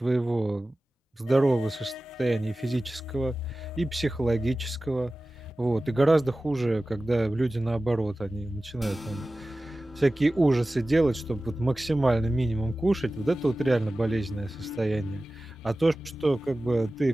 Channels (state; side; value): normal; both; correlation 0.96